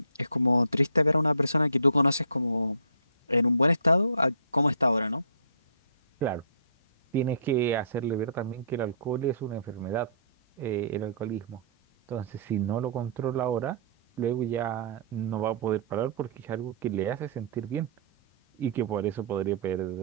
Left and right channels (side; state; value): both; inverted; correlation -0.51